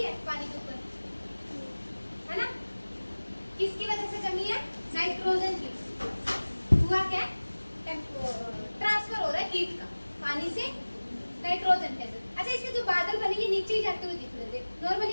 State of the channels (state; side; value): inverted; both; correlation -1.00